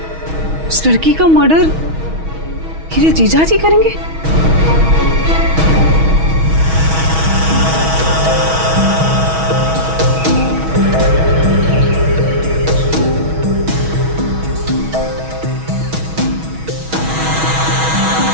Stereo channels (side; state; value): left; late; 6.2 ms